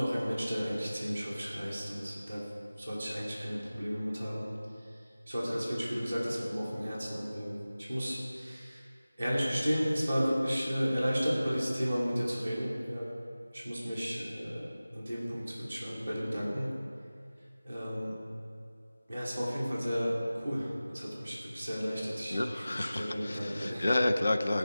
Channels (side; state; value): both; inverted; correlation -0.97